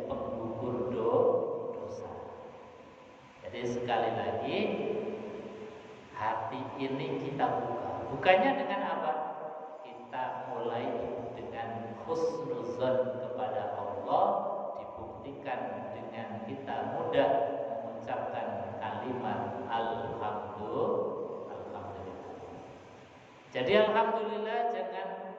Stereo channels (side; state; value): both; identical; correlation 1.00